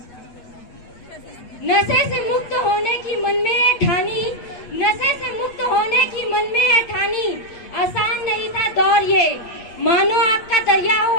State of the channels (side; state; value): right; late; 8.4 ms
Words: नशे से मुक्त होने की मन में है ठानी, नशे से मुक्त होने की मन में है ठानी। आसान नहीं था दौर ये, मानो आपका दरिया हो